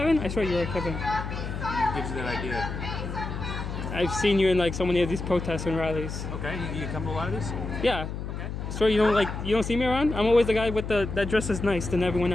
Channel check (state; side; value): noise; left; hum, 6 dB below the sound